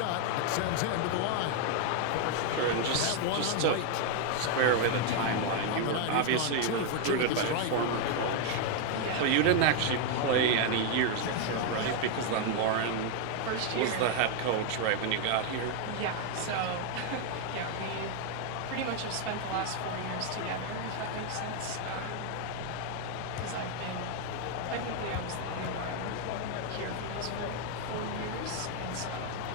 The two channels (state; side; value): different; both; correlation 0.01